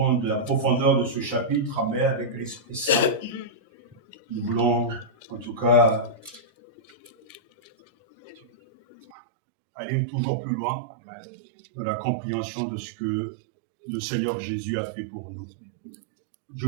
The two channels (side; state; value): left; drops out; at 9.1 s